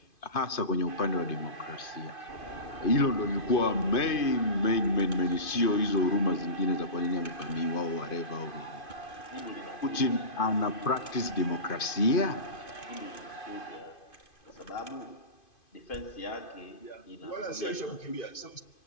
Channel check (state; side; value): late; right; 2.5 ms